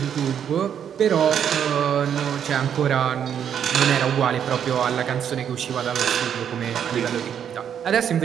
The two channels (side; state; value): left; quieter; 8.7 dB